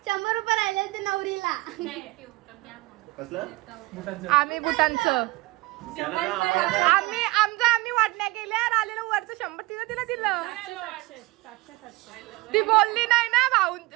100 रुपये राहिले आणि ते नवरीला. आम्ही बुटांचं आम्ही वाटण्या केल्या. आलेलं वरचं 100 तिला दिलं. ती बोलली नाही ना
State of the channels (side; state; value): left; quieter; 21.9 dB